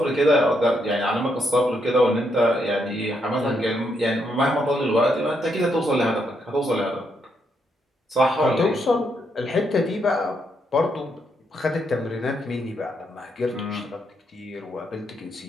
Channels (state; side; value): normal; both; correlation 0.77